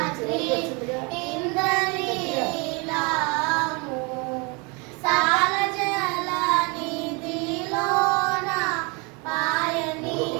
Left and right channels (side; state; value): left; quieter; 30.3 dB